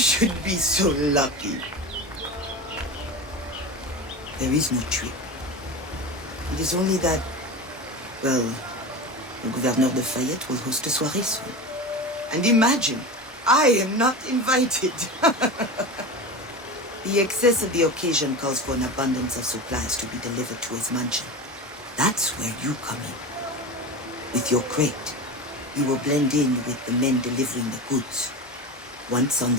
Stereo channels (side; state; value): both; normal; correlation 0.27